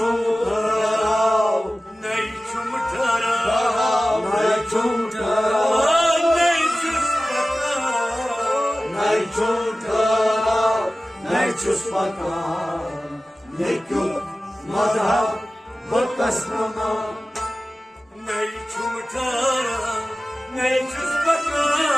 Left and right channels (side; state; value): both; normal; correlation 0.96